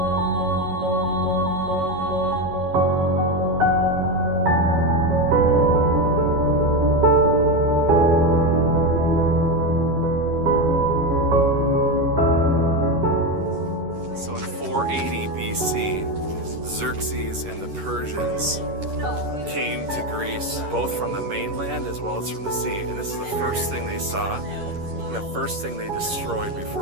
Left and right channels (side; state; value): left; late; 11 ms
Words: So in 480 BC, Xerxes and the Persians came to Greece, both from the mainland as well as from the sea. And this is the first thing they saw and the first thing they destroyed